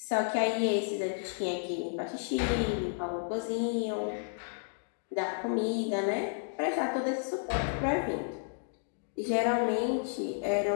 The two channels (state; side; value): silent; right; digital silence